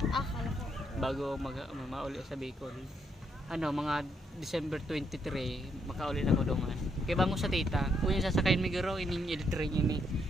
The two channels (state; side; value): normal; both; correlation 0.75